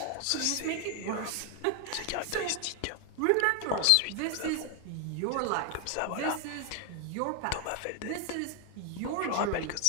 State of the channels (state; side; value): different; both; correlation 0.00